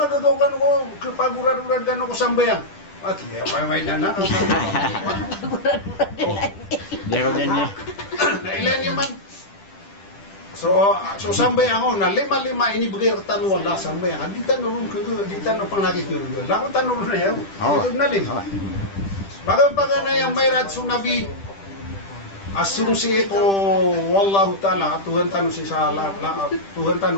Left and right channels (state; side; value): late; right; 10 ms